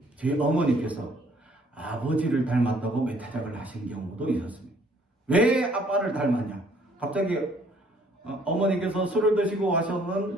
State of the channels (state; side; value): normal; both; correlation 0.62